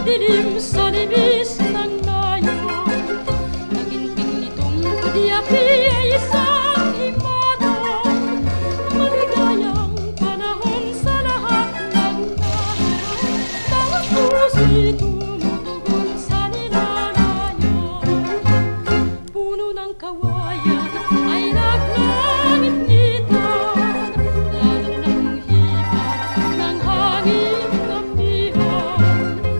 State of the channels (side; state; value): both; inverted; correlation -1.00